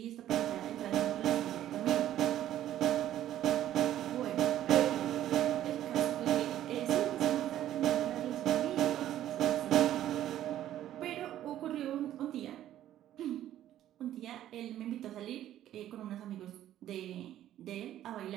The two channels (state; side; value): quieter; left; 12.3 dB